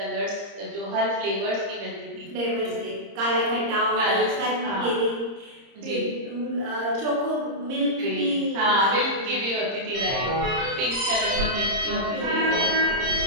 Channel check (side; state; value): left; late; 30 ms